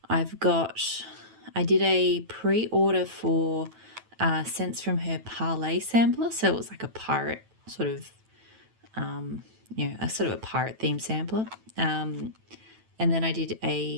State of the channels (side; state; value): left; late; 9.1 ms